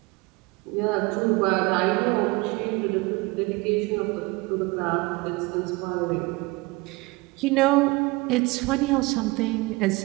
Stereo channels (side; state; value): left; quieter; 23.9 dB